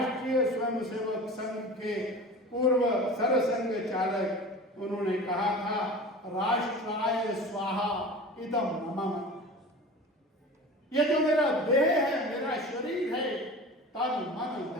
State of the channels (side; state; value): both; normal; correlation 0.35